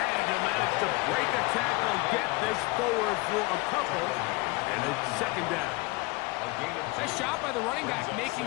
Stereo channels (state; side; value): quieter; right; 24.5 dB